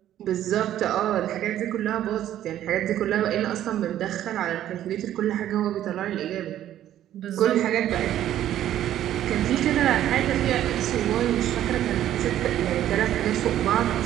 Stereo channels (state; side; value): quieter; left; 12.0 dB